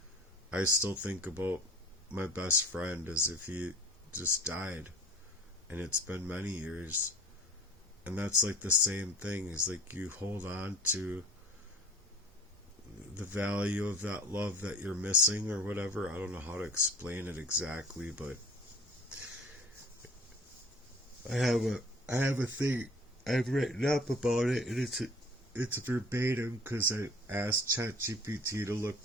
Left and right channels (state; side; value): normal; both; correlation 0.45